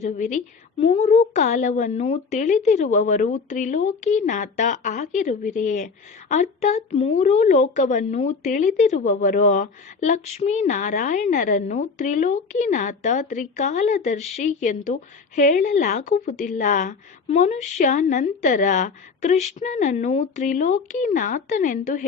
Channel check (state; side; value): quieter; right; 5.0 dB